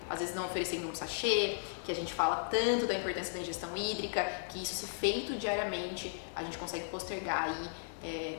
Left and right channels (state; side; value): silent; right; digital silence